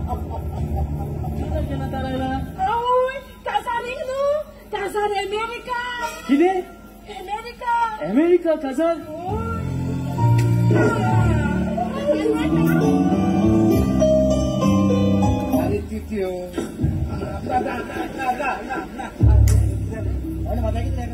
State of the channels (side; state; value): both; identical; correlation 1.00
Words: Kita tarayla. Oy, casarinho no, casar América. Kine? América. America kazar. Ari titio.